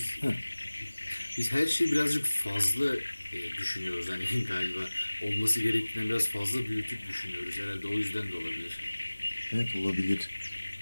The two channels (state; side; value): inverted; both; correlation -1.00